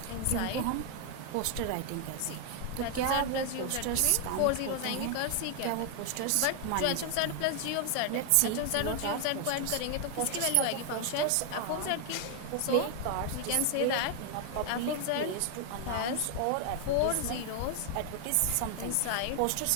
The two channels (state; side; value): different; both; correlation 0.00